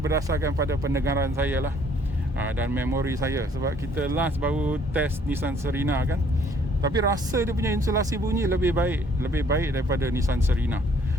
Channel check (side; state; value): both; normal; correlation 0.61